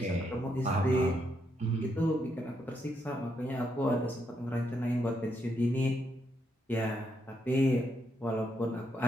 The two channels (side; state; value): both; normal; correlation 0.79